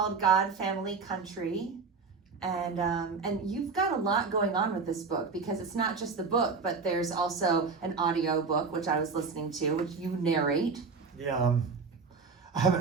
God, Family, Country. And you've got a lot going on with this book because it's not just the book, but there's also an audio book, which I was listening to, which you narrate. Yeah, I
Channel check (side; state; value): left; quieter; 4.8 dB